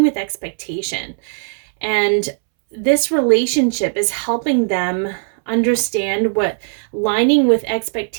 with expectation. And this relationship is helping them understand what lining with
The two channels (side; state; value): left; silent; 67 dB below the other